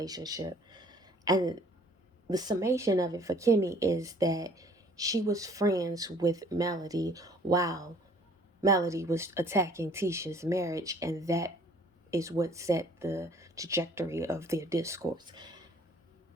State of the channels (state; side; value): normal; both; correlation 0.55